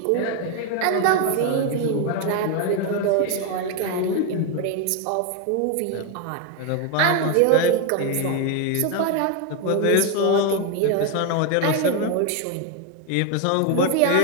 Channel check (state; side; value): different; both; correlation 0.01